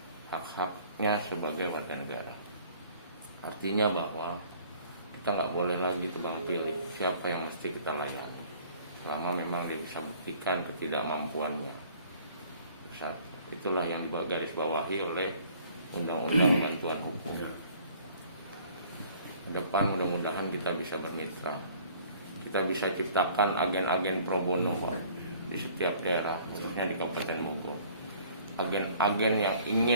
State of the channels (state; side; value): inverted; both; correlation -0.54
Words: hak-haknya sebagai warga negara. Artinya bahwa kita nggak boleh lagi tebang pilih siapa yang mesti kita layani, selama memang dia bisa buktikan ketidakmampuannya. Itulah yang digarisbawahi oleh Undang-Undang Bantuan Hukum. Ke depan mudah-mudahan kita bisa bermitra, kita bisa ciptakan agen-agen pro bono di setiap daerah, khususnya di Kabupaten Bogor. Agen-agen yang